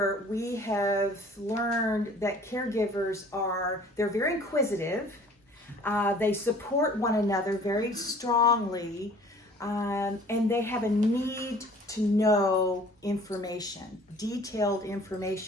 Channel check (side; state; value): both; normal; correlation 0.51